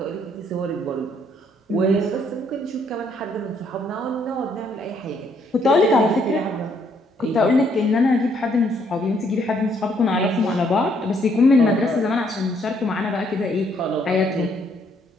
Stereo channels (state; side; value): normal; both; correlation 0.69